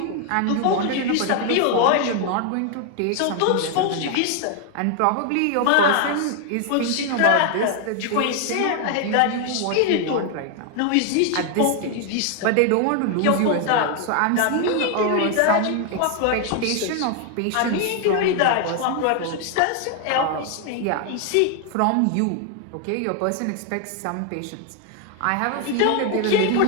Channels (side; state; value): both; different; correlation 0.00